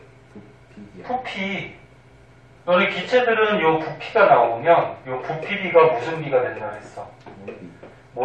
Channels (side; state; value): both; identical; correlation 1.00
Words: 부피. 너네 기체들은 요 부피가 나오면 요 부피비가 무슨 비가 된다 그랬어?